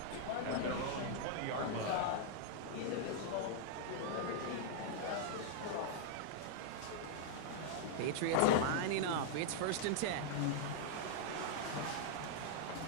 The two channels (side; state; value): both; different; correlation -0.01